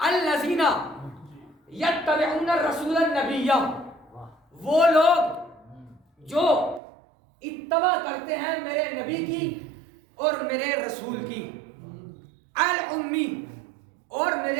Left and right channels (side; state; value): left; drops out; at 6.8 s